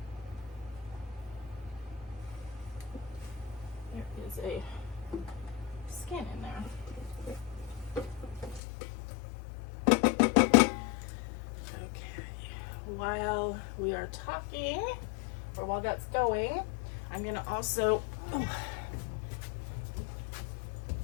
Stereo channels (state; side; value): drops out; right; at 8.6 s